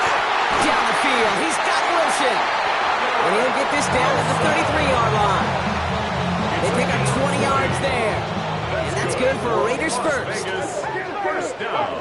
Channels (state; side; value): identical; both; correlation 1.00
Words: Down the field, he's got Wilson. And he'll get this down at the 33-yard line. They pick up 20 yards there. good for a Raiders first. Vegas, first down.